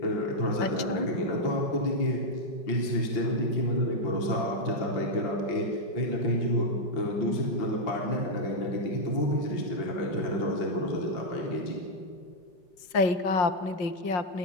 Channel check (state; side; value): late; right; 5.6 ms